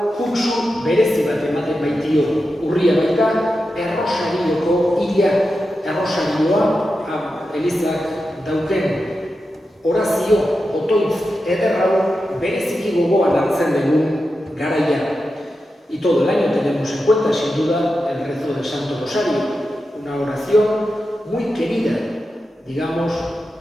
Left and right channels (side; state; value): both; normal; correlation 0.90